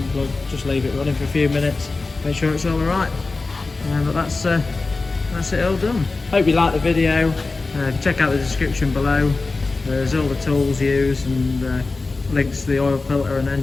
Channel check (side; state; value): right; quieter; 3.7 dB